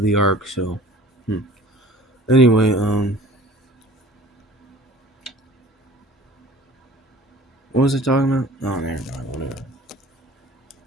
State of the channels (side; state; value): both; normal; correlation 0.48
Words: the ark. So, anyway, what was I talking about? Oh, never mind. Whatever.